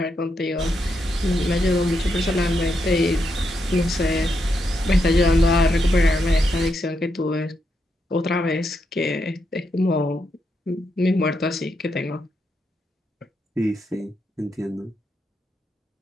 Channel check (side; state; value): both; normal; correlation 0.82